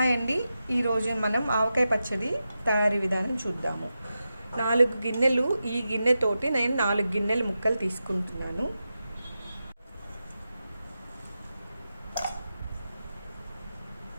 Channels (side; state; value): both; inverted; correlation -0.91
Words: అండి. ఈరోజు మనం ఆవకాయ పచ్చడి తయారీ విధానం చూద్దాము. 4 గిన్నెలు, ఈ గిన్నెతోటి నేను 4 గిన్నెలు ముక్కలు తీసుకుంటున్నాను.